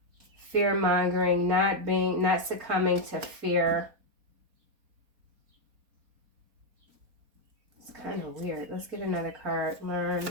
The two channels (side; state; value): left; late; 4.3 ms